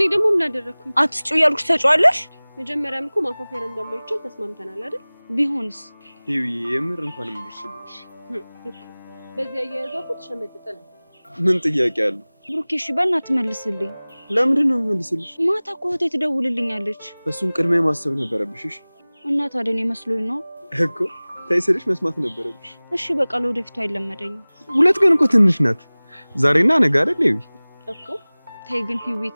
ደግሞ ምን አደረኩኝ? አትጩ ያልኩሽ ተጫዋለሽ። መጀመሪያም እኮ ማፋፈር እንደማይቻል ተስማምተናል አይደል? ቢሆንስ? ይሄ የምር እንኳን ምርሽልሽ። በዚህ አያያዟ እኮ ተሸመጥጠ ነው። ምን ጥያቄ አለ? ብሩኬ እሺ በእናትህ መልስልኝ። ለምንድን ነው መልስልሽ? ማታ እኮ እህቴ ትደውልልኛለች። እሱን ቅድሚያ ማሰብ ነበረብሽ። እሺ እና ታዲያ እኔ መስሎኝ ነው እኮ ታይስልሽ መስማት ነበረብሽ። እሺ በቃ ለወደፊቱ አይለመደኝም። ሁለት ቀን እኮ ትንሽ ናት። ዛሬና ነገ አይደል? ይሄ እኮ ተይ ግን ሂዊ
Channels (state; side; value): inverted; both; correlation -1.00